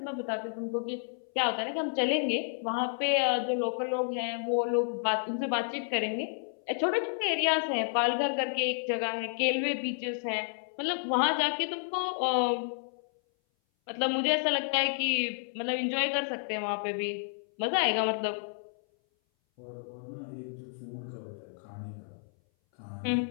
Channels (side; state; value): right; silent; 57 dB below the other